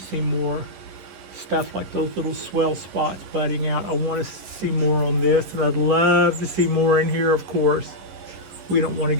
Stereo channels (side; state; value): left; late; 11 ms